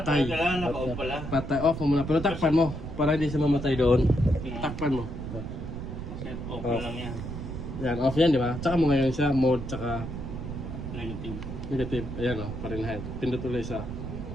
Kailangan naka-off pala. Patay. Off mo muna. Pero takpan mo. Para hindi siya mamatay doon. Takpan mo. Set off na lang yan. Yan, off yan, di ba? Tsaka mo ngayon siya, mode tsaka Negative. negative. Ayan o, Fahrenheit. Pindot ulit sa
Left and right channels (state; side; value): noise; right; rumble, 7 dB below the sound